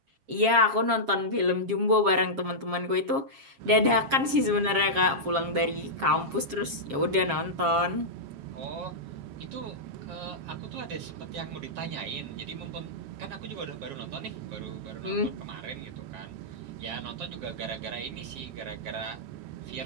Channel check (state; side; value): late; left; 7.4 ms